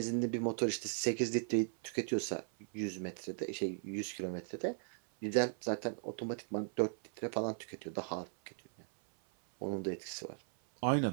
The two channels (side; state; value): left; silent; 53 dB below the other